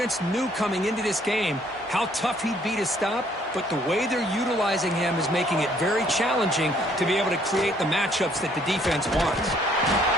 knew coming into this game how tough he'd be to stop, but the way they're utilizing him is making it very challenging to be able to create the matchups that the defense wants.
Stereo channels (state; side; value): normal; both; correlation 0.64